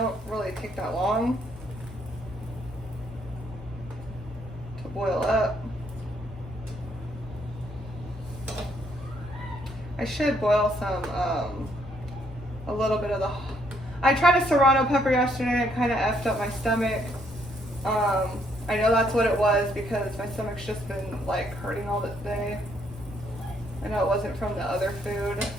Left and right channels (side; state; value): both; normal; correlation 0.70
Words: really take that long to boil up. I should boil some, a little bit of the, I tried a serrano pepper yesterday and it kind of effed up my stomach. I know that's what it was because my stomach's just been like hurting all this day. I know it wasn't from the other food.